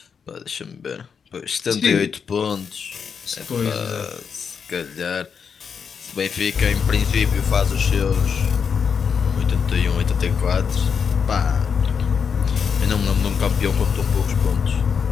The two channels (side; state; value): right; quieter; 6.5 dB